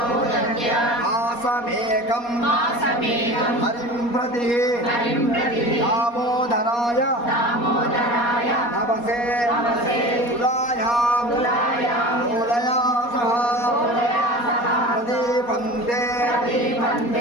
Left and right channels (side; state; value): right; late; 4.2 ms